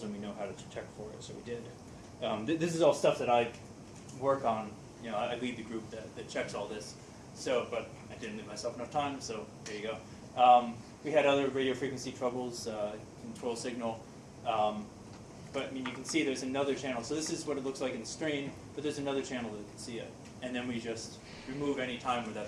and we know how to detect for it, so we did. This is all stuff that I work on. You know, I lead the group that checks all this. So, but I didn't leave myself enough time, so there you go. We had other radio frequency troubles, control signal. But I mean, you can see there's another channel. So this is what it looks like in the strain, but there's another channel that can see it. And then we just remove any time where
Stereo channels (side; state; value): both; identical; correlation 1.00